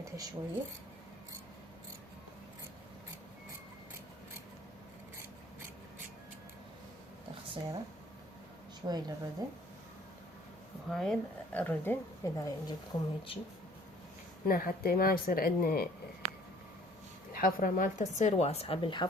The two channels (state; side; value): normal; both; correlation 0.56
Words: شوية، تخصيرة شوي للردن، وهاي الردن اذا يعجبكم هيجي. هنا حتى ما يصير عندنا الحفرة مالته تصير واسعة